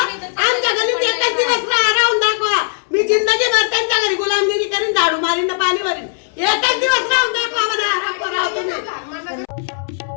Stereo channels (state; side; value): silent; right; 67 dB below the other